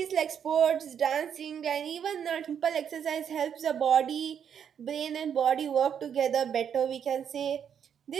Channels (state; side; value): quieter; left; 8.2 dB